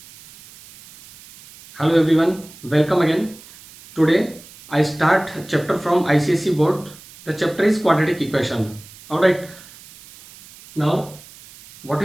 Hello everyone, welcome again. Today I start chapter from ICSE board. The chapter is quadratic equation. Alright. Now what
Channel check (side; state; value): right; noise; hiss, 21 dB below the sound